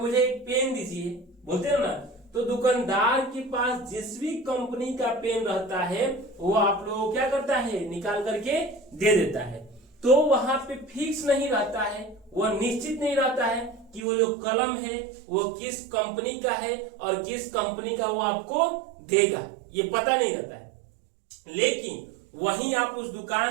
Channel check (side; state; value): left; drops out; at 14.0 s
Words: एक पेन दीजिए, बोलते हैं ना, तो दुकानदार के पास जिस भी कंपनी का पेन रहता है, वो आप लोगों क्या करता है, निकाल करके दे देता है। तो वहां पे फिक्स नहीं रहता है, वो निश्चित नहीं रहता है कि वो जो कलम है वो किस कंपनी का है और किस कंपनी का वो आपको देगा, ये पता नहीं रहता है। लेकिन वहीं आप उस